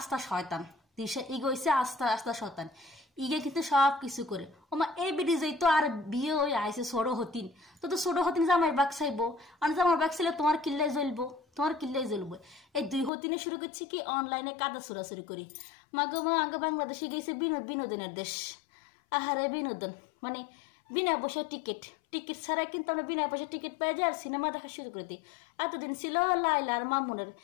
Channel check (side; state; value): right; drops out; at 13.1 s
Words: শয়তান তিশা ইগোইছে আস্থা আস্থা শয়তান ইগে কিন্তু সব কিছু করে ওমা এই বিডি যাই তো আর বিয়ে হয়ে আইসে ছোট হতিন তো ছোট হতিন জামাই বাগ চাইবো আর জামাই বাগ চাইলে তোমার কিল্লাই জ্বলবো তোমার কিল্লাই জ্বলবো এই দুই হতিনে শুরু করছি কি অনলাইনে কাদা চুরাচুরি করি মাগো মা আগে বাংলাদেশে গেছে বিনোদনের দেশ আহারে বিনোদন মানে বিনা পয়সা টিকিট ছাড়া কিন্তু আমরা বিনা পয়সা টিকিট পেয়ে যাই আর সিনেমা দেখা শুরু করে দিই এতদিন ছিল লাইলা আর মামুনের